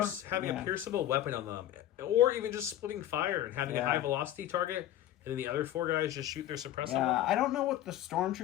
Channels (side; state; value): right; quieter; 12.6 dB